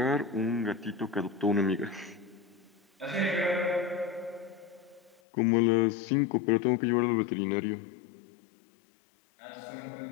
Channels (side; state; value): right; drops out; at 5.2 s